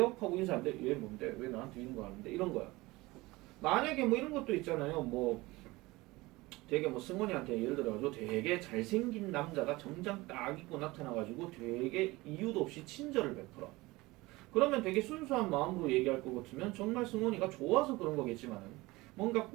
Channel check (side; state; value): left; quieter; 21.1 dB